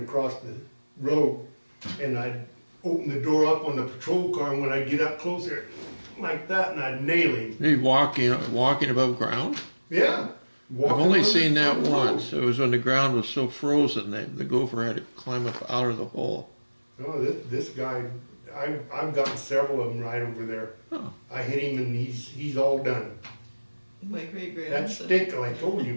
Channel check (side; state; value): both; inverted; correlation -1.00